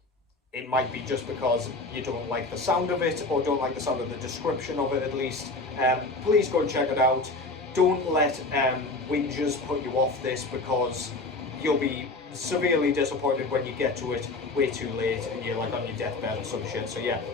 it might be just because you don't like the sound of it, or don't like the sound of the description of it at least. Please go and check it out. Don't let whingers put you off this, because you'll be severely disappointed when you get to it way too late and you're like on your deathbed or some shit. So yeah,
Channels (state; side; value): quieter; right; 3.2 dB